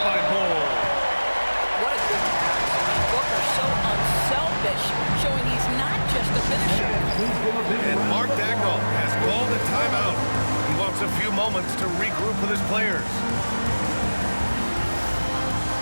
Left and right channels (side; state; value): both; inverted; correlation -1.00